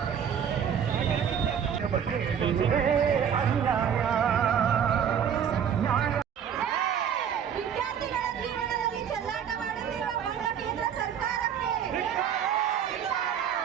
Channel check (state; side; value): quieter; left; 8.3 dB